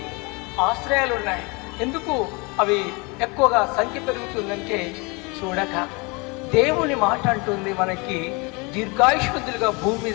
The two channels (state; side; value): quieter; right; 28.3 dB